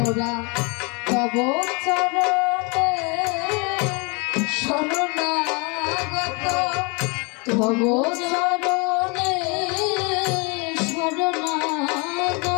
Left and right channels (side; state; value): right; quieter; 31.5 dB